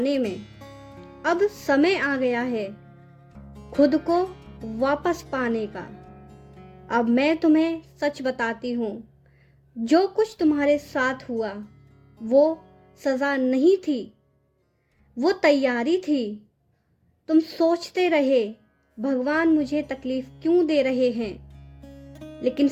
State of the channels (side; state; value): both; identical; correlation 1.00